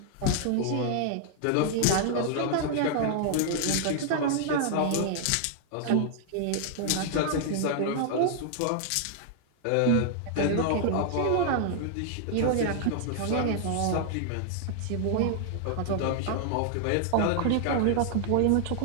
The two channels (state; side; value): different; both; correlation 0.00